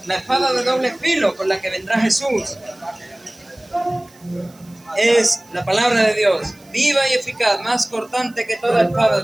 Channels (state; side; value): noise; right; hiss, 28 dB below the sound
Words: La espada de doble filo con la que vendrá Jesús es la palabra de Dios, viva y eficaz, más cortante que toda espada